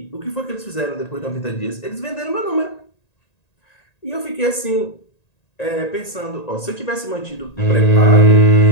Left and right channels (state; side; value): late; right; 1.9 ms